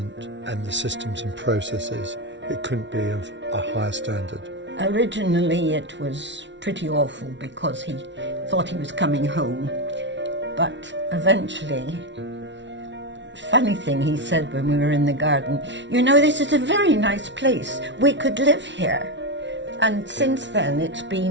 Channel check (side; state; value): left; late; 0.53 ms